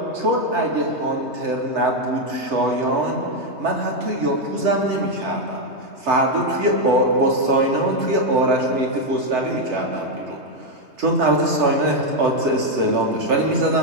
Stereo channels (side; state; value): left; late; 3.3 ms